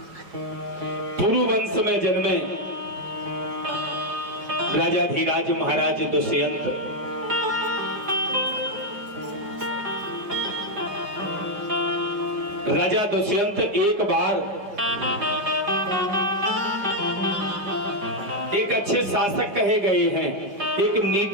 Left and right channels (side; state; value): left; late; 4.9 ms